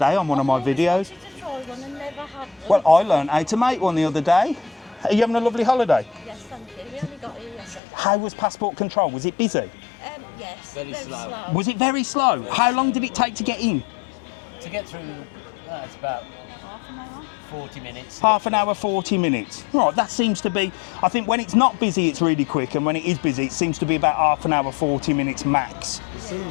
on one of my videos. Well, I learned how to make one the other day. Are you having a lovely holiday? Yes, thank you. We only got here yesterday. How was passport control? Was it busy? Yes. Very slow. Was it very slow? How long did it take to get in? To get through, it's about 40 minutes. Half an hour, 40 minutes. Right, that seems to be, I think when it's not busy, it's really quick, and when it is busy, it seems to be about half an hour, 40 minutes max. It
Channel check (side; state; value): right; drops out; at 7.8 s